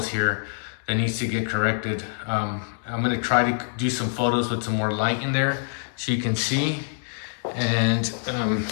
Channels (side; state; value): right; silent; 62 dB below the other